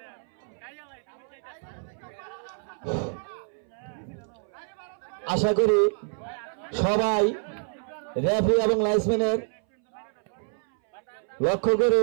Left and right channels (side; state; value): left; silent; 60 dB below the other